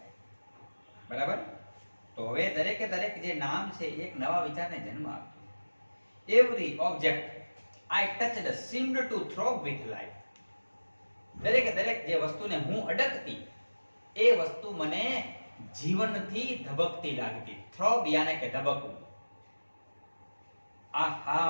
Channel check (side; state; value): both; inverted; correlation -1.00